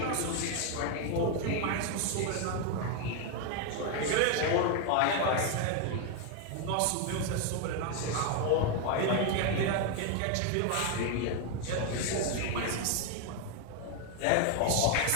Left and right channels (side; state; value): both; different; correlation 0.01